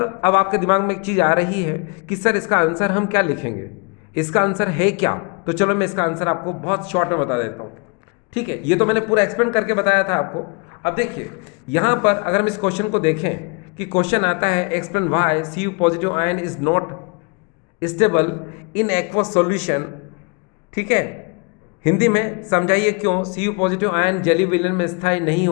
अब आपके दिमाग में एक चीज़ आ रही है कि सर इसका आंसर हम क्या लिखेंगे, इसका आंसर है क्या? तो चलो मैं इसका आंसर आपको बहुत शॉर्ट में बता देता हूँ, ठीक है। ये तो मैंने पूरा एक्सप्लेन करके बताया था आपको। अब देखिए यहाँ पर अगर हम इस क्वेश्चन को देखें कि क्वेश्चन आता है explain why Cu positive ion is not stable in aqueous solution, ठीक है। हिंदी में समझाइए क्यों Cu पॉजिटिव आयन जली विलयन में स्थायी नहीं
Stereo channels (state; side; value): quieter; right; 32.0 dB